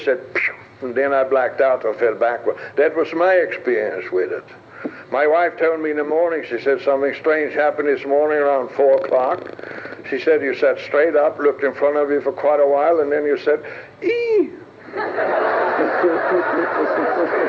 said, phew, and then I blacked out and fell backward. That was my experience with it. My wife told me in the morning, she said, something strange happened this morning around 4 o'clock. She said, you sat straight up, looked in front of you for quite a while, and then you said, ee!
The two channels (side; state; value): both; identical; correlation 1.00